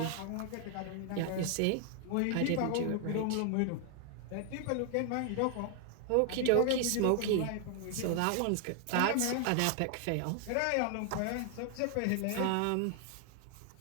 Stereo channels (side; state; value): both; different; correlation 0.00